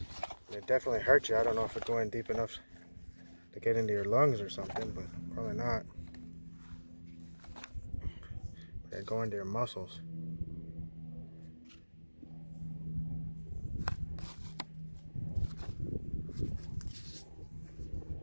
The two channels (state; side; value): inverted; both; correlation -1.00